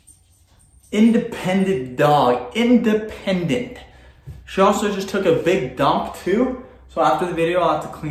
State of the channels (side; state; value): both; identical; correlation 1.00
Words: Independent dog. Independent. She also just took a big dump too. So after the video, I'll have to